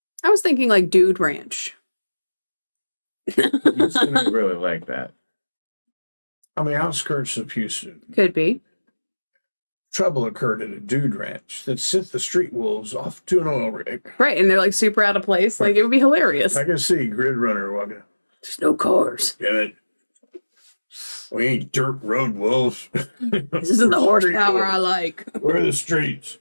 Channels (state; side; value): inverted; both; correlation -1.00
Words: was thinking like Dude Ranch. Houston ain't really like that. On the outskirts of Houston, Could be. trouble occurred at a dude ranch that sent the street wolves off to an oil rig. Right. And they're like super out of place. Like, it would be hilarious. I can see Grid Runner walking. There's no cars. Damn it. We ain't dirt road wolves. This isn't the horsepower I like. We're the streets.